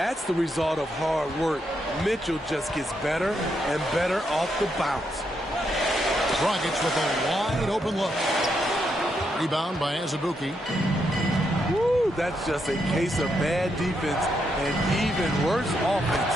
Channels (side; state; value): both; normal; correlation 0.80